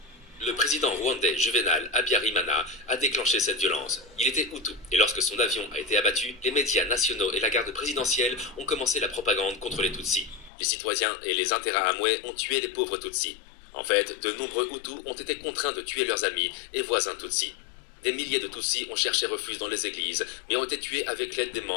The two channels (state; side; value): drops out; right; at 10.5 s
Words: Le président rwandais Juvenal Habyarimana a déclenché cette violence. Il était Hutu, et lorsque son avion a été abattu, les médias nationaux et la garde présidentielle ont commencé la propagande contre les Tutsis. Les citoyens et les Interahamwe ont tué les pauvres Tutsis. En fait, de nombreux Hutus ont été contraints de tuer leurs amis et voisins Tutsis. Des milliers de Tutsis ont cherché refuge dans les églises, mais ont été tués avec l'aide des